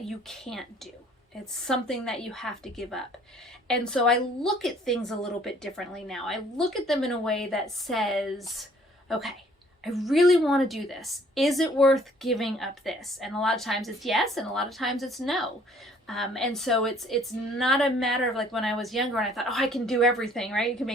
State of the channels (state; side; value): normal; both; correlation 0.58